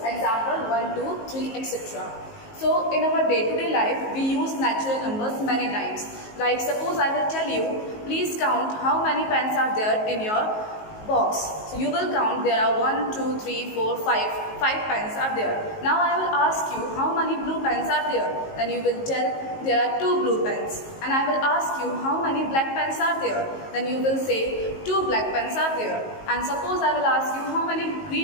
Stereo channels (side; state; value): right; late; 19 ms